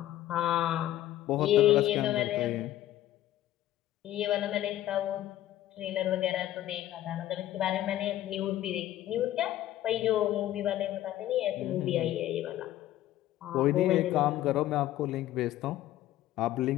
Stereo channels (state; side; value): quieter; right; 13.7 dB